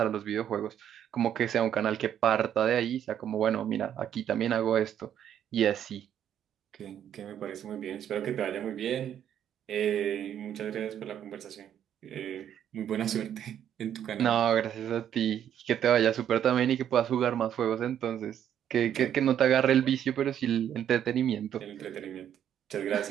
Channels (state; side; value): quieter; left; 9.9 dB